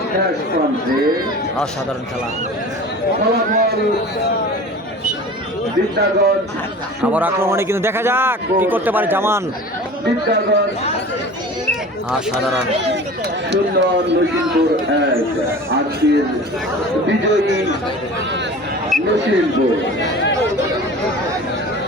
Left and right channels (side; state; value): both; normal; correlation 0.39